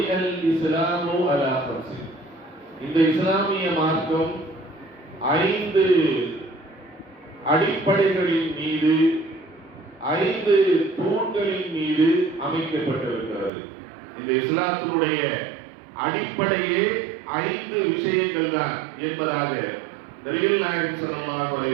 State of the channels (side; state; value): left; drops out; at 13.5 s